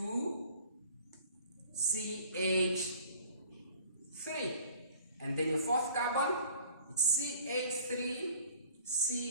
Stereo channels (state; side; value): inverted; both; correlation -0.51